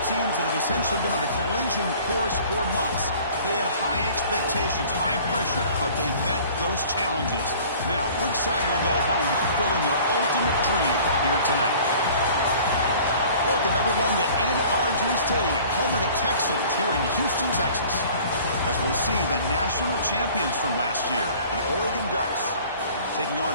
teams that have essentially been on a collision course for months. They had high expectations, high pressure, but they met those challenges. Now, which side will go home fulfilling their ultimate dream here tonight? Welcome, everyone, to NRG Stadium, home of the Texans here in Houston, Texas. As we'll see the national champions from last year, the Oregon Ducks, taking on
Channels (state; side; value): inverted; both; correlation -0.48